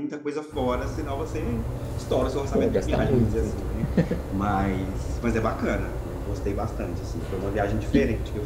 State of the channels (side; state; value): both; identical; correlation 1.00